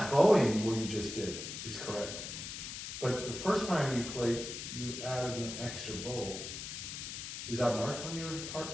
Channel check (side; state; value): left; noise; hiss, 7 dB below the sound